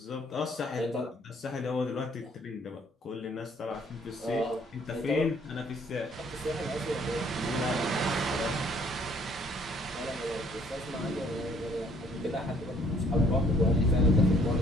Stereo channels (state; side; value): normal; both; correlation 0.61